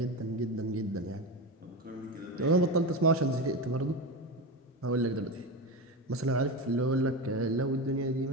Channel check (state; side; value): normal; both; correlation 0.20